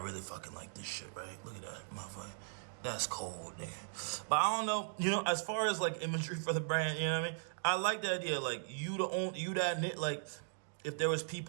fucking like this shit, right? Look at that, motherfucker. That's cold, nigga. But I don't know, you know, as far as like imagery for the brand, you know what I mean? I like the idea, like you that knit, like if there was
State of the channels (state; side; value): silent; left; digital silence